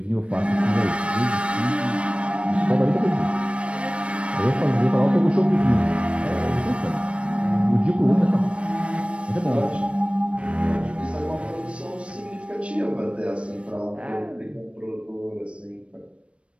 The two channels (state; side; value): late; left; 0.060 ms